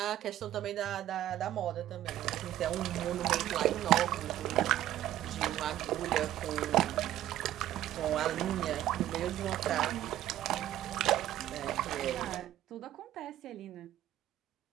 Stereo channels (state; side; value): quieter; left; 13.1 dB